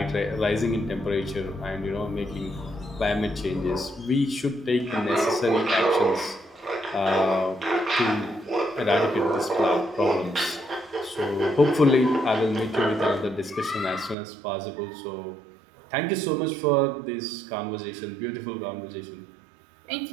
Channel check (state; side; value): drops out; left; at 14.2 s